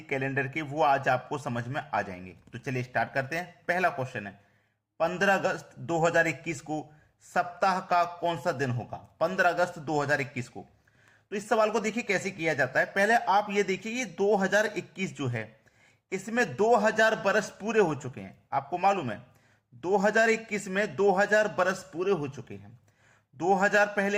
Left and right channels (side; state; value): both; identical; correlation 1.00